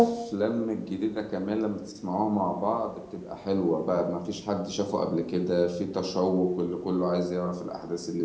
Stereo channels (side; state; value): both; identical; correlation 1.00